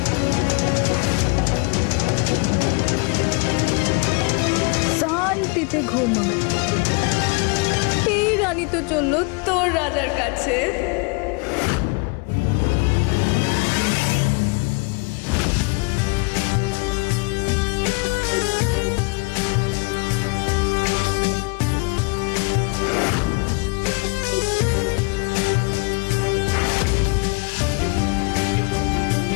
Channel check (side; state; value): right; quieter; 31.3 dB